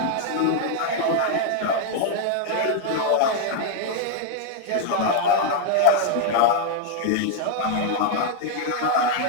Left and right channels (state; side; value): different; both; correlation 0.00